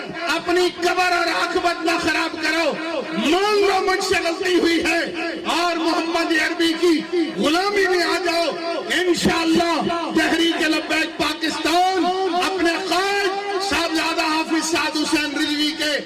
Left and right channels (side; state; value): both; identical; correlation 1.00